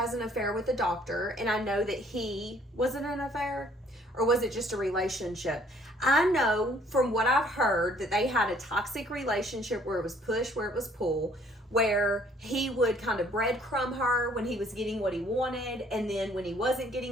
an affair with the doctor, and I know that was it an affair? Or was it just a relationship? I know from what I've heard that they had a toxic relationship where it was push, where it was pull, where he would kind of breadcrumb her when he was getting what he wanted, and then when he wasn't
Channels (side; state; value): both; normal; correlation 0.60